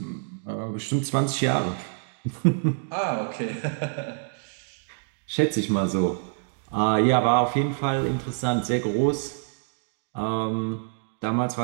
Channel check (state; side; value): silent; left; digital silence